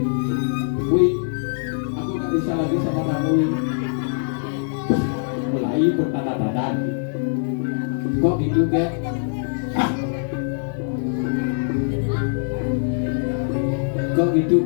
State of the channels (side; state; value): right; silent; digital silence